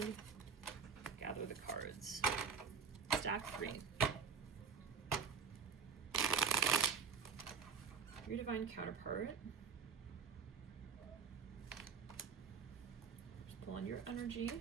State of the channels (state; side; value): quieter; left; 5.9 dB